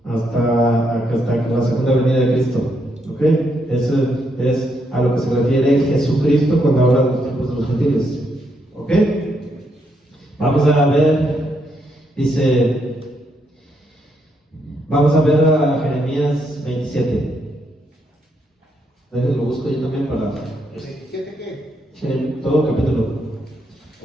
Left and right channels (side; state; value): both; normal; correlation 0.78